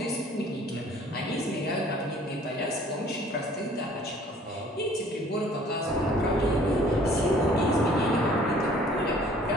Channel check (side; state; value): both; normal; correlation 0.54